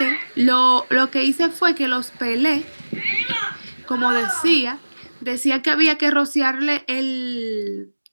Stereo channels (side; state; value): both; inverted; correlation -1.00